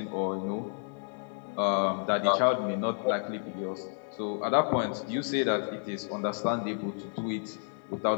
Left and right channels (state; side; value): silent; right; 57 dB below the other